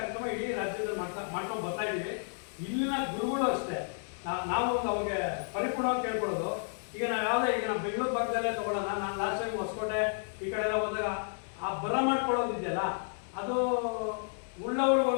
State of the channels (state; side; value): silent; right; digital silence